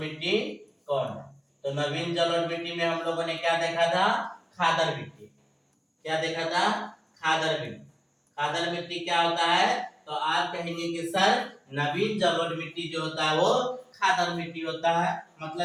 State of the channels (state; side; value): identical; both; correlation 1.00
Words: कौन है। तो नवीन जलोढ़ मिट्टी में हम लोगों ने क्या देखा था, खादर मिट्टी। क्या देखा था, खादर मिट्टी। खादर मिट्टी क्या होता है, तो आप कहेंगे कि सर नवीन जलोढ़ मिट्टी जो होता है वो खादर मिट्टी होता है,